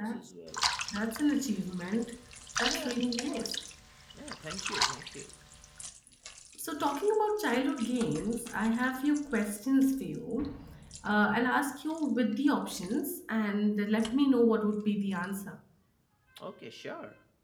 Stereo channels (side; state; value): both; identical; correlation 1.00